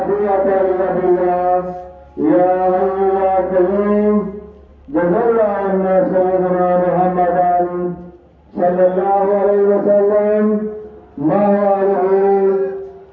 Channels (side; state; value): both; identical; correlation 1.00